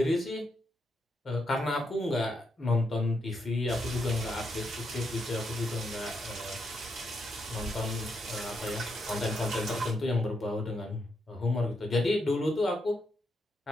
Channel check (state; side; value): normal; both; correlation 0.80